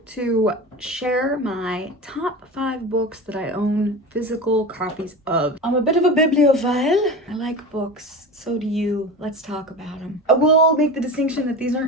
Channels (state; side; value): normal; both; correlation 0.29